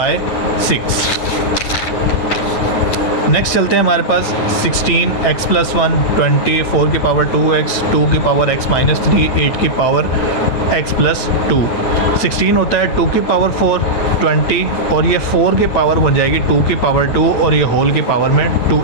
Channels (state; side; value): late; right; 9.0 ms